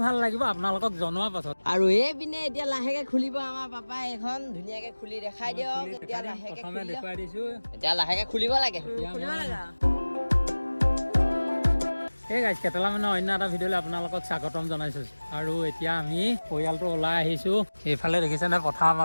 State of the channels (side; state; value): both; inverted; correlation -1.00